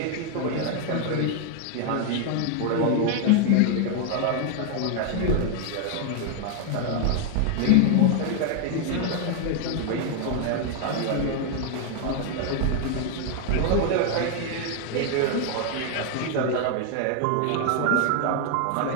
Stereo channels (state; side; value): different; both; correlation 0.00